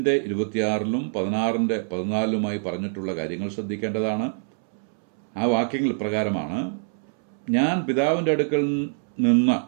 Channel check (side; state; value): left; silent; 62 dB below the other